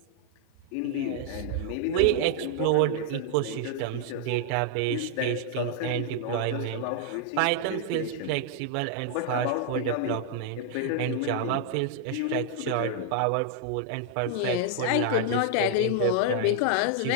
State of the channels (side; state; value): both; different; correlation -0.01